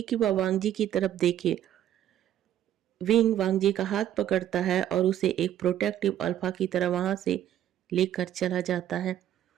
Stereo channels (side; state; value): left; quieter; 11.5 dB